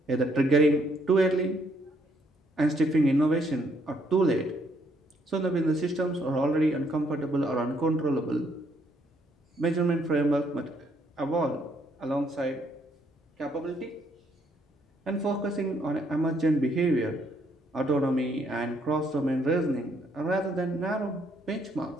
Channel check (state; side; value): normal; both; correlation 0.70